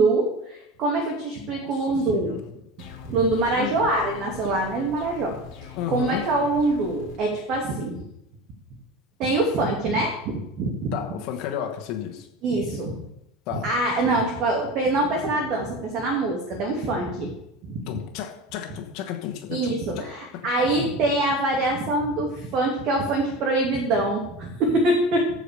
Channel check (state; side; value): normal; both; correlation 0.31